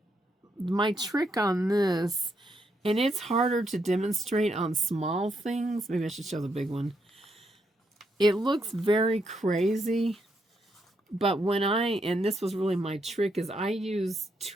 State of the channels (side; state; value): both; normal; correlation 0.78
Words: my trick on this, and it's harder to demonstrate on small things. Maybe I should show the big one. It looks very crazy, but when and this was really my trick, is I use